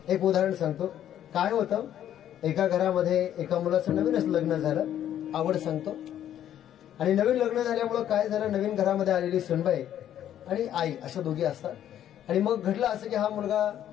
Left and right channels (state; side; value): quieter; right; 10.9 dB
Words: एक उदाहरण सांगतो. काय होतं, एका घरामध्ये एका मुलाचं नवीनच लग्न झालं, आवड सांगतो. आणि नवीन लग्न झाल्यामुळं काय झालं, नवीन घरामध्ये आलेली सुनबाई आणि आई अशा दोघी असतात. आणि मग घडलं असं की हा मुलगा